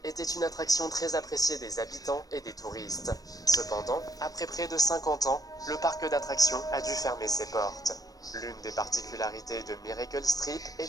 était une attraction très appréciée des habitants et des touristes. Cependant, après près de 50 ans, le parc d'attractions a dû fermer ses portes. L'une des particularités de Miracle Strip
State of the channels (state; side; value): late; right; 0.18 ms